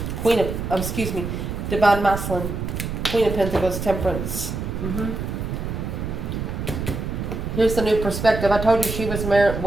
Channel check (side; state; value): right; noise; rumble, 4 dB below the sound